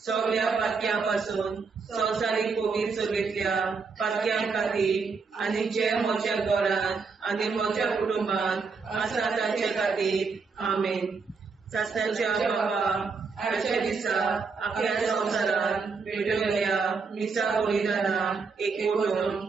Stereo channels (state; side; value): quieter; left; 4.9 dB